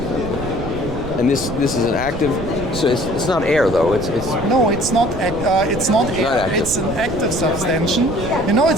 And this is an active. So it's not air though. It's no, it's not. It's not air. Not it's an active subtension.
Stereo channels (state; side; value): noise; right; rumble, 9 dB below the sound